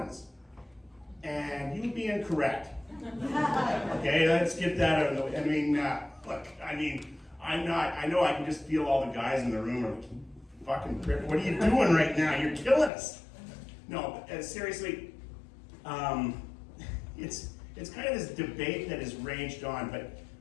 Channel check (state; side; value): drops out; right; at 12.9 s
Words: And you'd be incorrect. Okay, let's get that out of the way. I mean, look, I know I can just feel all the guys in the room are like, fucking prick, what are you doing right now? You're killing us. No, seriously, it's kind of this debate that has raged on, but